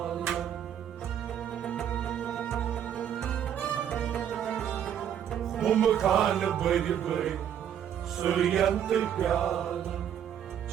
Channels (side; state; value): left; quieter; 9.5 dB